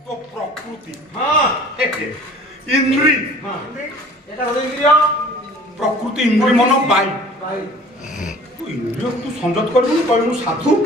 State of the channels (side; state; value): both; normal; correlation 0.48